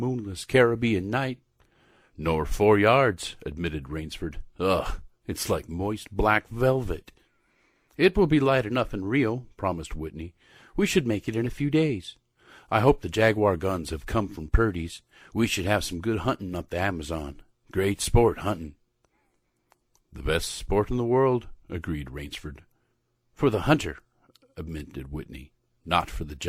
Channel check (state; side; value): identical; both; correlation 1.00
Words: Caribbean night." "Nor 4 yards," admitted Rainsford. "Ugh, it's like moist black velvet." "It will be light enough in Rio," promised Whitney. "We should make it in a few days. I hope the Jaguar guns have come from Purdy's. We should have some good hunting up the Amazon. Great sport, hunting." "The best sport in the world," agreed Rainsford. "For the hunter," admitted Whitney, "not for the